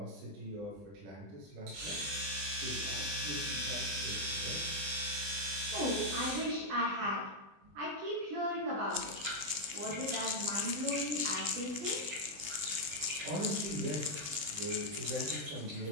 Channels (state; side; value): late; left; 20 ms